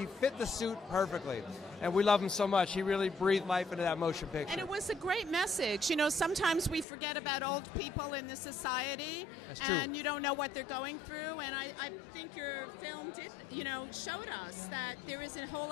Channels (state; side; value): drops out; right; at 6.9 s